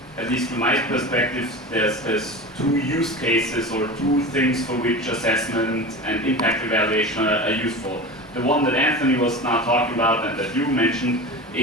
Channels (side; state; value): both; normal; correlation 0.30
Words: at least from my perspective, there's two use cases or two things for which assessment and impact evaluation are useful. The one that Anthony was now talking about and that you mentioned